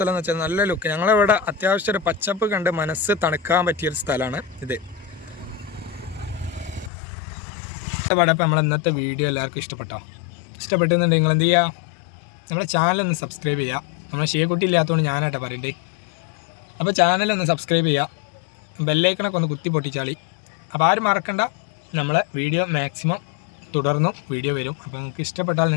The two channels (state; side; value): drops out; right; at 6.9 s